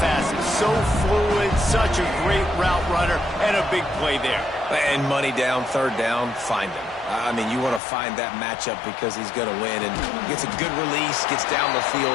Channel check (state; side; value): drops out; right; at 7.8 s